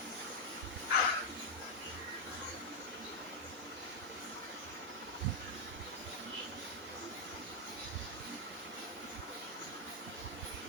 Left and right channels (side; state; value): left; noise; hiss, 23 dB below the sound